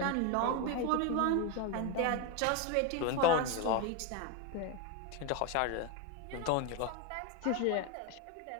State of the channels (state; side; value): different; both; correlation 0.02